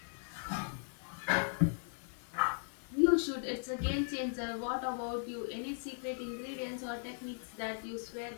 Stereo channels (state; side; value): silent; right; digital silence